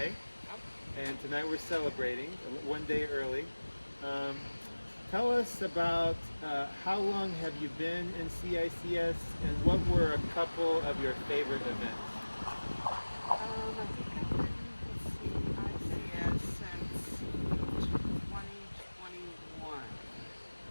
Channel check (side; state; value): both; inverted; correlation -1.00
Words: And tonight we're celebrating one day early. Tell us about how long have you been in CICS and what were a couple of your favorite events? I think I've been with CICS since 2021, I